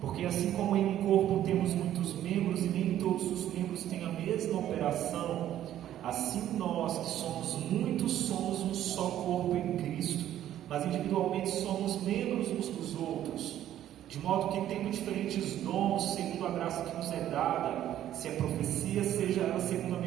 assim como em um corpo temos muitos membros e nem todos os membros têm a mesma operação, assim nós que somos muitos somos um só corpo em Cristo, mas individualmente somos membros uns dos outros, de modo que tendo diferentes dons segundo a graça que nos é dada, se é profecia, seja ela segundo a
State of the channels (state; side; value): quieter; left; 11.9 dB